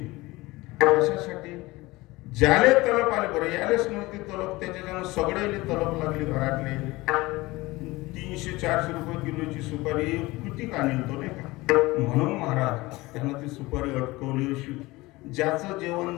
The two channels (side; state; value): right; quieter; 20.8 dB